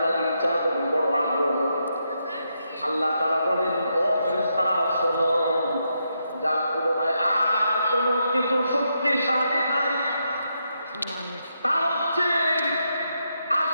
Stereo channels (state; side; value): inverted; both; correlation -0.81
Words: ইচ্ছা, বড় বড় আগ্রহ। আল্লাহ তাআলা বলেন, ও ফেরেশতারা শোনো, যার তুলনায় আর কোন কিছু শক্তিশালী নাই, তা হচ্ছে